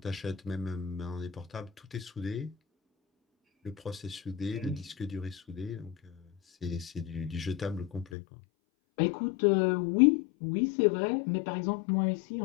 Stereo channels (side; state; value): right; drops out; at 8.1 s